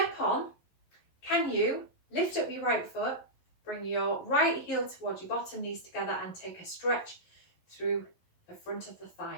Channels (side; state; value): right; late; 11 ms